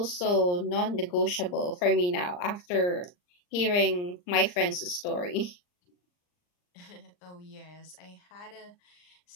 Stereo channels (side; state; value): right; late; 39 ms